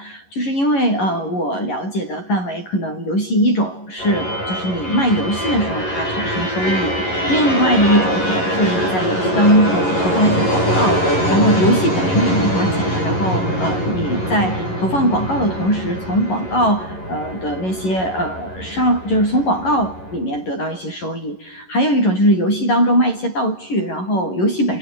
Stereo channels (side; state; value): right; late; 11 ms